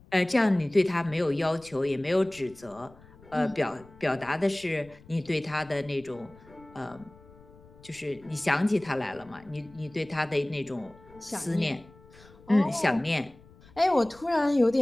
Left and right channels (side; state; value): left; noise; rumble, 24 dB below the sound